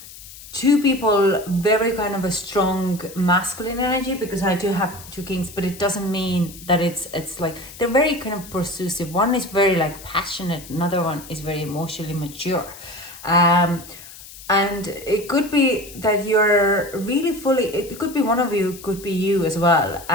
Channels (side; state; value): left; noise; hiss, 17 dB below the sound